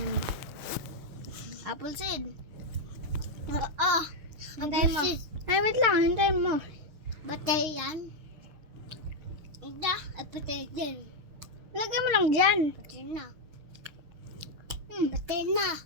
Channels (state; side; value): late; left; 6.6 ms